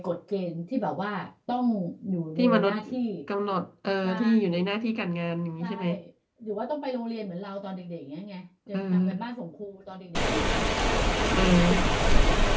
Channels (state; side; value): identical; both; correlation 1.00